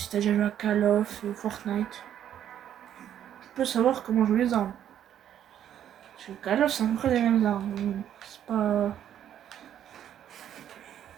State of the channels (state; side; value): quieter; left; 10.3 dB